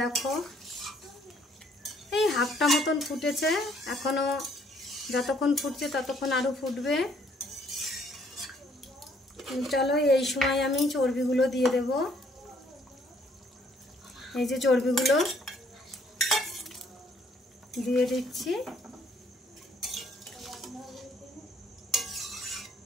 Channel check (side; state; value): both; normal; correlation 0.65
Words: এই হাফটা মতন ফুটেছে, এখনো যতক্ষণ ফুটছে ততক্ষণ আরো ফুটবে। চলো এই সময় আমি চর্বিগুলো দিয়ে দেব। এই যে চর্বিগুলো দিয়ে দিচ্ছি।